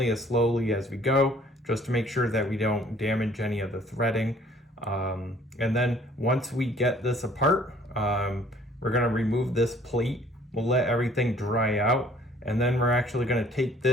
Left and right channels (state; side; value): normal; both; correlation 0.57